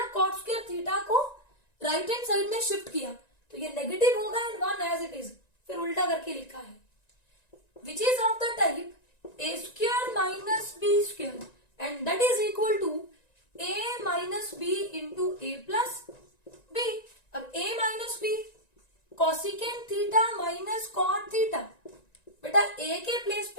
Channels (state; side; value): late; right; 1.9 ms